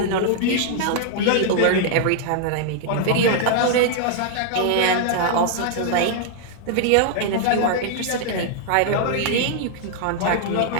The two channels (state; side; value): different; both; correlation -0.01